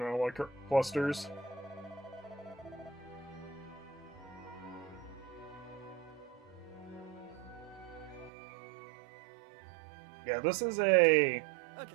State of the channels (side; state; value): left; drops out; at 8.3 s